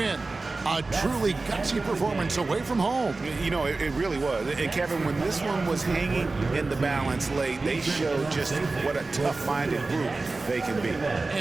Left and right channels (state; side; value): quieter; left; 3.5 dB